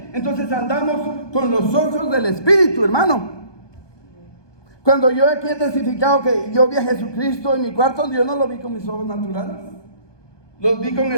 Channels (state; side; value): late; right; 1.2 ms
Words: Entonces andamos con los ojos del Espíritu, hermano. Cuando yo aquí he testificado que yo vi a Jesucristo en mi cuarto, yo no lo vi con mis ojos naturales, los vi con